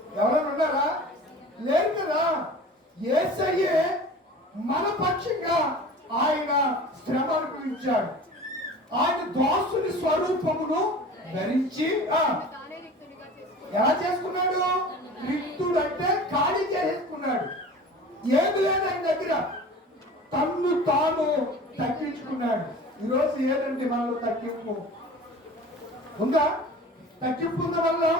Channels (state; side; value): normal; both; correlation 0.39